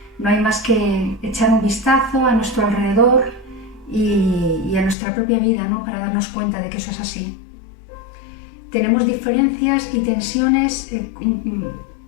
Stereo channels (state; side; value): drops out; right; at 5.0 s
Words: No hay más que echar un vistazo a nuestro alrededor y a nuestra propia vida, ¿no?, para darnos cuenta de que eso es así. Tenemos diferencias y tensiones